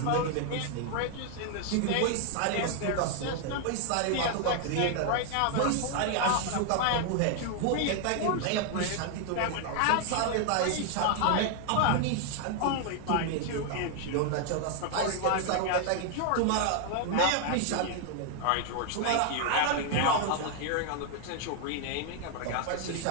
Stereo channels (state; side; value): different; both; correlation 0.00